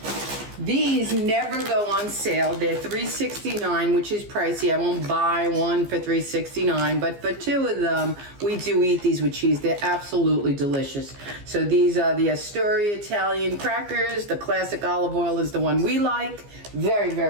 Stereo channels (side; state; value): left; late; 15 ms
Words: These never go on sale. They're $3.69, which is pricey. I won't buy one for $3.69, but for 2 of them, we do eat these with cheese. They're absolutely delicious. So these are the Astoria Italian crackers. The classic olive oil is the one we like. Very,